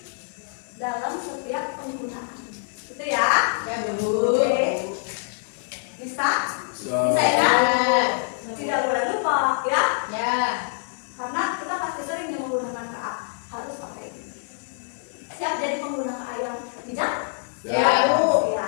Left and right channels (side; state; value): right; silent; 62 dB below the other